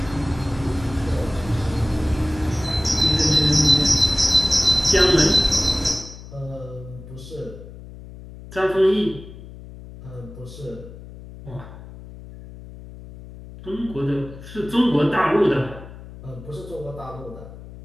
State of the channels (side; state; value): left; noise; hum, 15 dB below the sound